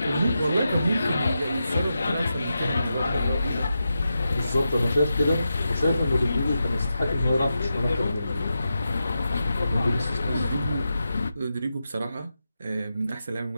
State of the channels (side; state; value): both; inverted; correlation -0.89